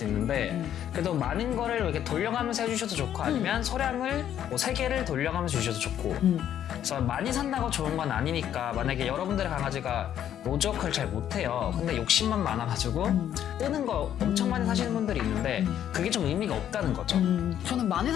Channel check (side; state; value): right; quieter; 10.4 dB